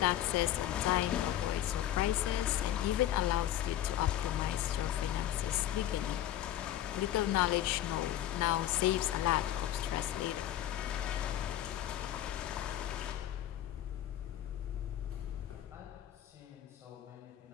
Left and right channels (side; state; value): right; quieter; 12.5 dB